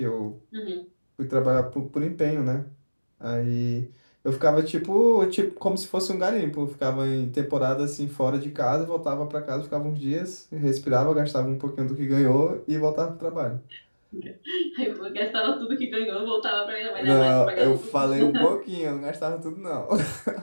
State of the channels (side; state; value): both; inverted; correlation -1.00